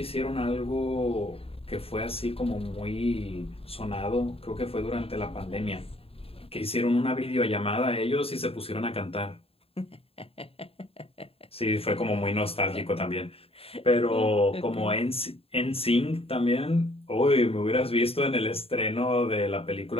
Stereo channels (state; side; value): late; right; 0.28 ms